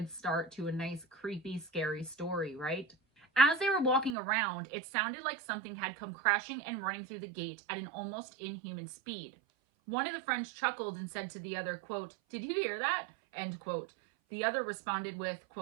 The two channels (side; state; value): left; drops out; at 4.2 s